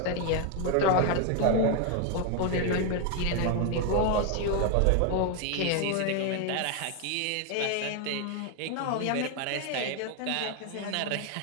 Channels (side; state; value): both; different; correlation 0.01